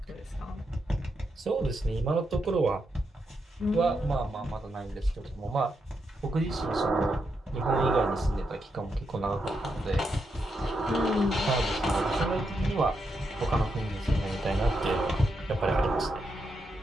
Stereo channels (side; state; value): both; normal; correlation 0.83